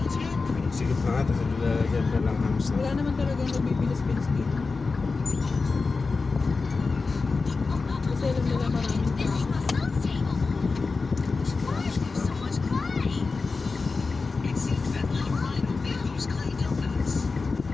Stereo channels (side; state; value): right; quieter; 4.2 dB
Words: Sige pa nga, dyan ka lang hams na. Wala naman talagang nabibilis-bilis dito. Kasi alam nila maraming tao.